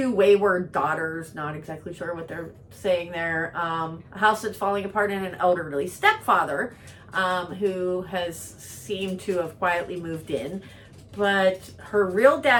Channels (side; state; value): both; identical; correlation 1.00